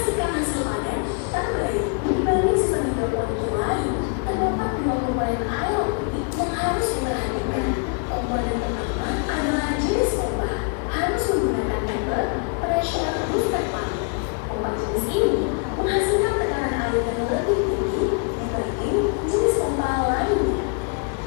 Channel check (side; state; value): right; quieter; 37.9 dB